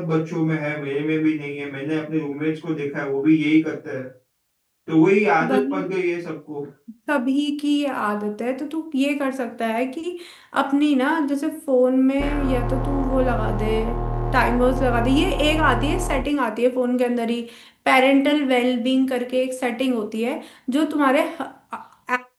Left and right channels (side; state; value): both; identical; correlation 1.00